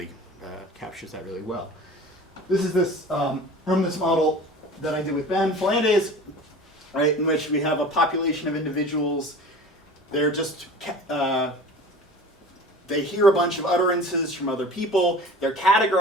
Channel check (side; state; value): both; normal; correlation 0.40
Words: captures that really well. This is this from this model that I did with Ben Flandes, right, in which we have a population of individuals. They're just they hear a bunch of utterances from other people, they're